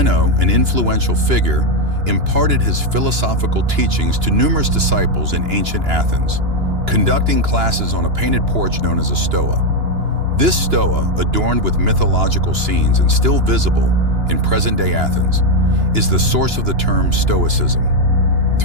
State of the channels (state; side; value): late; left; 2.9 ms